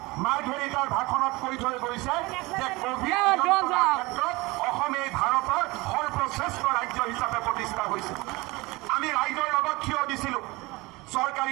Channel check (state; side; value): quieter; left; 22.8 dB